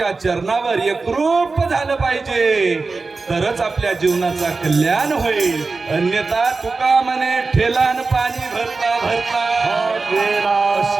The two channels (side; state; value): left; quieter; 4.0 dB